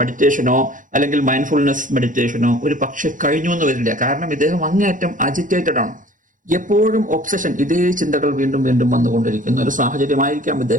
അല്ലെങ്കിൽ മൈൻഡ്ഫുൾനെസ് മെഡിറ്റേഷനോ ഒരു പക്ഷെ കഴിഞ്ഞു എന്ന് വരില്ല. കാരണം ഇദ്ദേഹം അങ്ങേയറ്റം അജിറ്റേറ്റഡ് ആണ്. എപ്പോഴും ഒബ്സഷൻ, ഇതേ ചിന്തകൾ വീണ്ടും വീണ്ടും വന്നുകൊണ്ടിരിക്കുന്ന ഒരു സാഹചര്യമായിരിക്കാം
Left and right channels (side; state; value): left; late; 0.38 ms